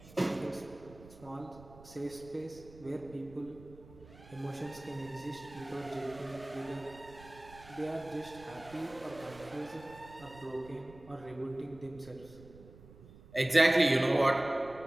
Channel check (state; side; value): noise; right; rumble, 20 dB below the sound